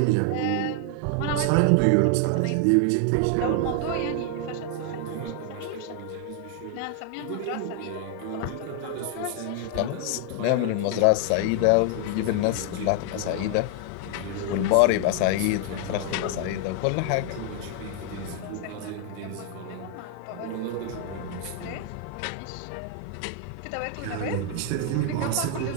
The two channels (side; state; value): both; different; correlation 0.00